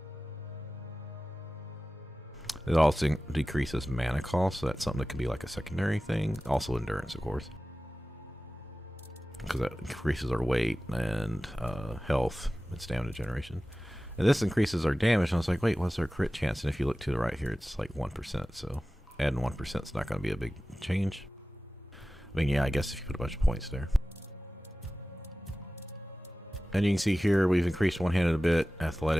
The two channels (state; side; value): normal; both; correlation 0.96